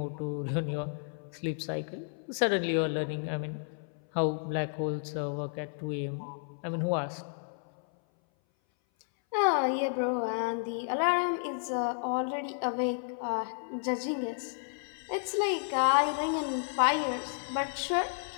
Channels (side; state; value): right; silent; 57 dB below the other